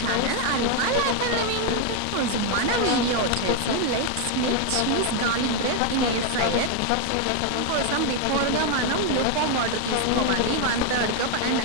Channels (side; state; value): both; different; correlation 0.00